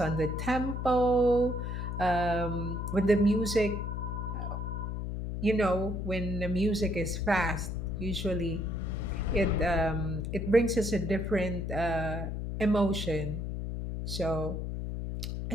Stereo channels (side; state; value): left; noise; hum, 4 dB below the sound